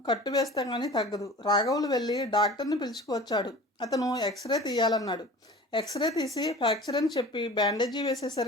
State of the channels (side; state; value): both; normal; correlation 0.40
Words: కట్టు వేస్తే కానీ తగ్గదు. రాఘవులు వెళ్ళి డాక్టర్ని పిలుచుకువచ్చాడు. అతను ఎక్స్రే తీయాలన్నాడు. ఎక్స్రే తీసి ఫ్రాక్చర్ అని చెప్పి బ్యాండేజీ